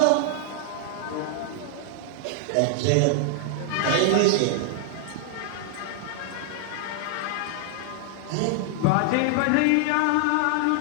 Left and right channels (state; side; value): different; both; correlation 0.00